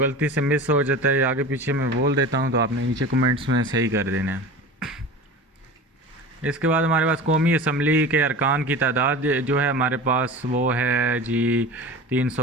से मिस हो जाता है या आगे पीछे मैं बोल देता हूँ तो आपने नीचे कमेंट्स में सही कर देना है। इसके बाद हमारे पास कौमी असम्बली के अरकान की तादाद जो है हमारे पास वो है जी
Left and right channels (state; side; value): normal; both; correlation 0.34